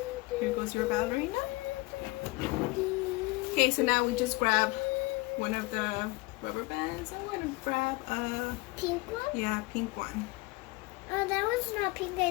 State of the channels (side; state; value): right; quieter; 24.0 dB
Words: Here goes your ballerina. Okay, so now we just grab one of the rubber bands. I'm going to grab a pink one? pink one. Oh, that one's not pink.